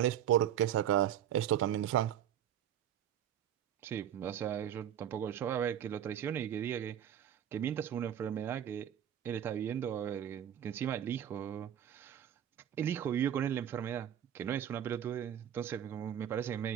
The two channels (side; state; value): left; quieter; 10.1 dB